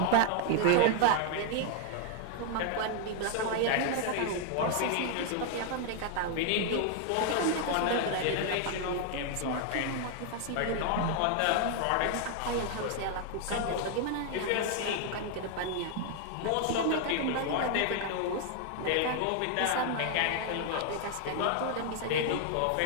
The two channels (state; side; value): different; both; correlation 0.00